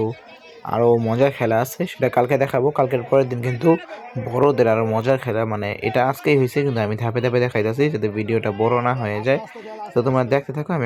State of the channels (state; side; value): identical; both; correlation 1.00